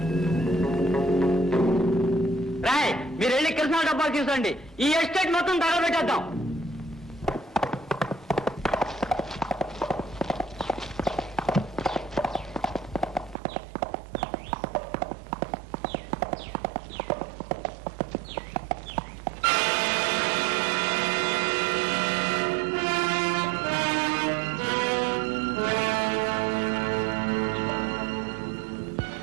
రాయ్ మీరు వెళ్ళి కృష్ణా డబ్బాలు తీసుకోండి. ఈ ఎస్టేట్ మొత్తం తగలబెట్టేద్దాం.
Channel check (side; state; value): left; drops out; at 13.4 s